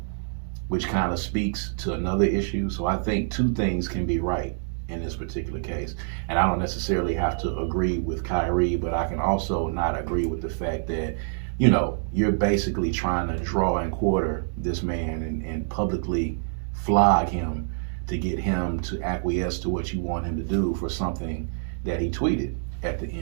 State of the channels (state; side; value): silent; left; digital silence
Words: which kind of speaks to another issue. So I think two things can be right in this particular case. And I don't necessarily have to agree with Kyrie, but I can also not agree with the fact that, you're basically trying to draw and quarter this man and publicly flog him to get him to acquiesce to what you want him to do for something that he tweeted at the